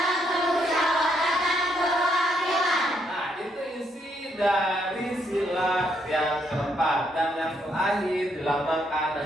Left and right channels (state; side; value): normal; both; correlation 0.74